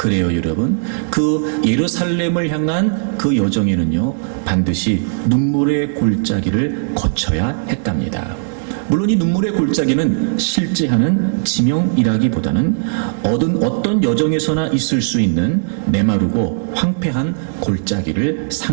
그래요, 여러분. 그 예루살렘을 향한 그 여정에는요, 반드시 눈물의 골짜기를 거쳐야 했답니다. 물론 이 눈물의 골짜기는 실제 하는 지명이라기보다는 어떤 여정에서나 있을 수 있는 메마르고 황폐한 골짜기를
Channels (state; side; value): silent; left; digital silence